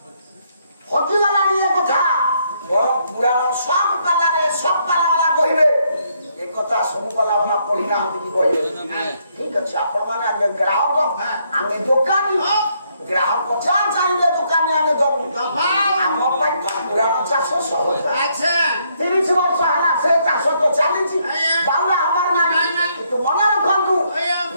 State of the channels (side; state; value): both; inverted; correlation -0.72